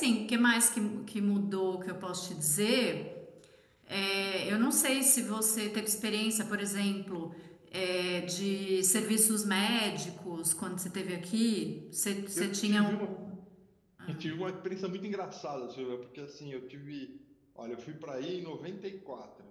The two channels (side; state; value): both; identical; correlation 1.00